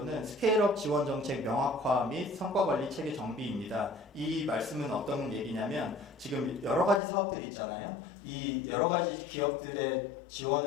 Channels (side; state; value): right; drops out; at 7.0 s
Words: 스케일업 지원 정책 명확화 및 성과 관리 체계 정비입니다. 이 말씀은 어떤 얘기냐면 지금 여러 가지 사업들이 있잖아요. 이 여러 가지 기업들의